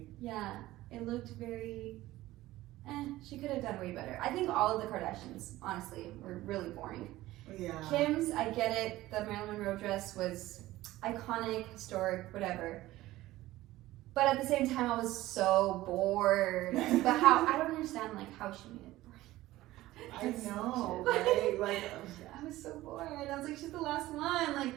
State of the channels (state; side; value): quieter; left; 16.7 dB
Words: Yeah, it looked very, she could have done way better. I think all of the Kardashians, honestly, were really boring. Yeah. Kim's, I get it, the Marilyn Monroe dress was iconic, historic, whatever. But at the same time, I was so bored. But how, I don't understand, like, how she made it boring. I know, right? Like, I was so bored. I was like, she's the last one.